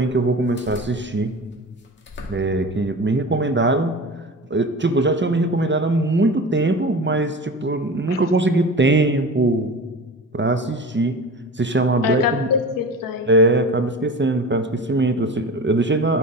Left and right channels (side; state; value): both; normal; correlation 0.34